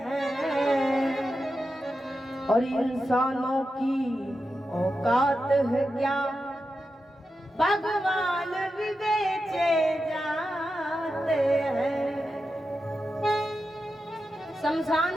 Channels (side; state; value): both; normal; correlation 0.90